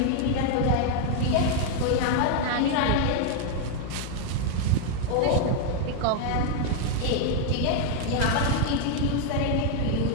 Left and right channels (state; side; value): different; both; correlation 0.00